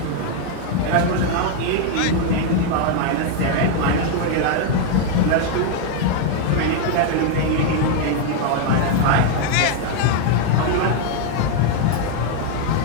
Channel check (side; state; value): both; different; correlation 0.01